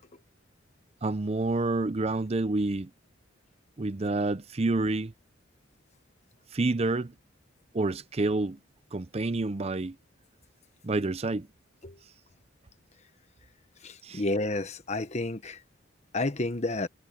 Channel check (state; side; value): normal; both; correlation 0.58